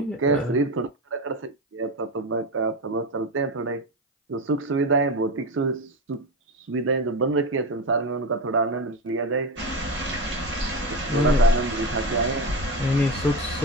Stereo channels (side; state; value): both; normal; correlation 0.19